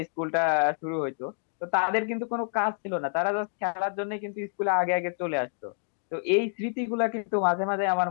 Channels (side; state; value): right; silent; digital silence